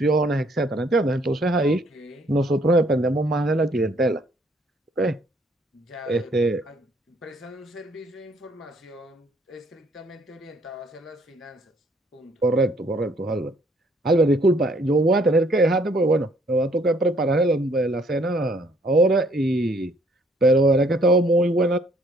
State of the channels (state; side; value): normal; both; correlation 0.64